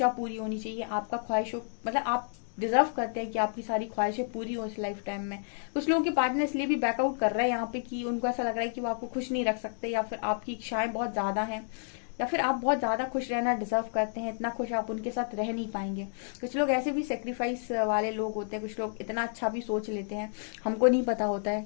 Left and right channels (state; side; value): silent; right; digital silence